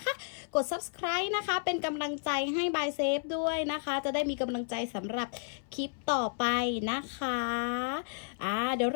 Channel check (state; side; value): silent; right; 56 dB below the other